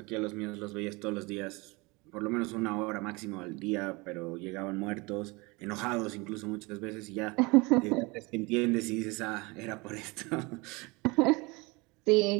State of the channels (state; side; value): quieter; left; 25.6 dB